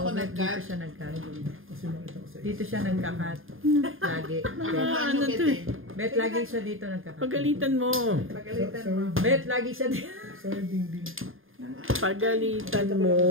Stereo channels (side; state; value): left; late; 0.59 ms